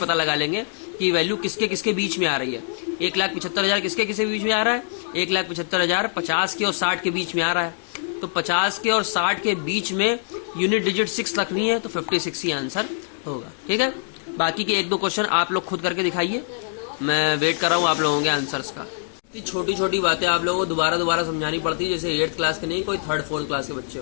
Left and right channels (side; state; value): right; silent; digital silence